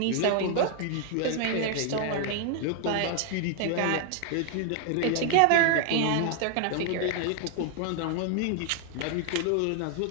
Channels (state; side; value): different; both; correlation 0.00